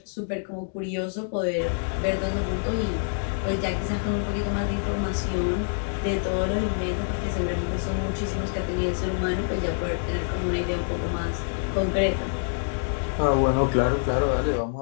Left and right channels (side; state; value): right; silent; digital silence